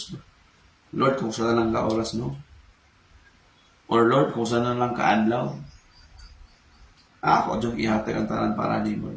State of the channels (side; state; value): both; identical; correlation 1.00